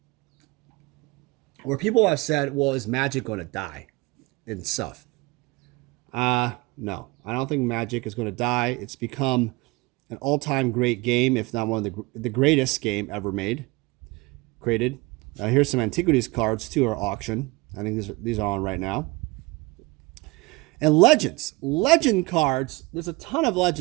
where people have said, well, is Magic going to die and stuff? No, I don't think Magic is going to die. It's become an all-time great game, if not one of the greatest game ever created. Here's some Antiquities cards too, are auction. I think these are on right now. And legend cards. There's a ton of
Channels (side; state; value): left; quieter; 23.7 dB